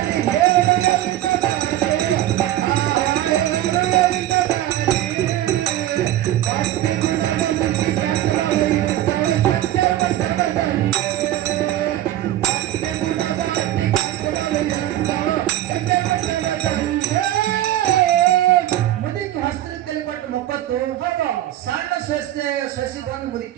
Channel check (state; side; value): quieter; left; 13.6 dB